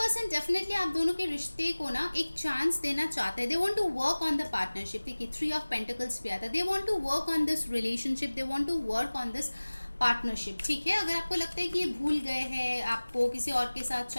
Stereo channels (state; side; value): inverted; both; correlation -1.00